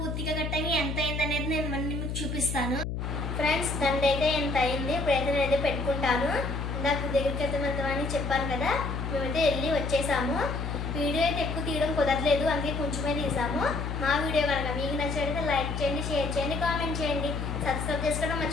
కట్టంగా ఎంత అయింది అనేది నేను మీకు చూపిస్తాను. ఫ్రెండ్స్, దండ అయితే ఎంత అయింది. ఇప్పుడైతే నేనైతే పెట్టుకుంటాను. ఇందాక దగ్గరికి అయితే వెళ్తామని చెప్పాను కదా, మేమైతే వెళ్ళి వచ్చేసాము. వీడియో అయితే ఎక్కువ తీయడం కుదరలేదు, అందుకే కొంచెమే తీసాము. మా వీడియో కనుక మీకు నచ్చినట్లయితే లైక్ చేయండి, షేర్ చేయండి, కామెంట్ చేయండి, సబ్స్క్రైబ్ చేసుకోవడం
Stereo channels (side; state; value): left; noise; hum, 3 dB below the sound